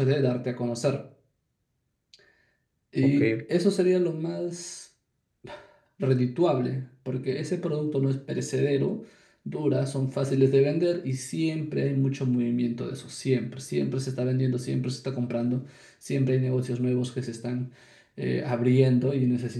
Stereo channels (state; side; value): identical; both; correlation 1.00